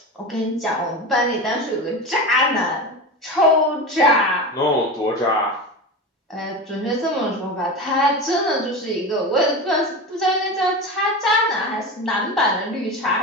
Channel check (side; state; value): both; normal; correlation 0.25